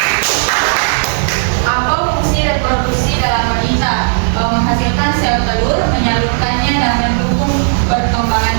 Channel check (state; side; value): silent; left; digital silence